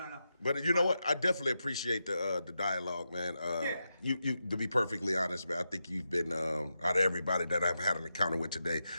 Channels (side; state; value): both; inverted; correlation -0.88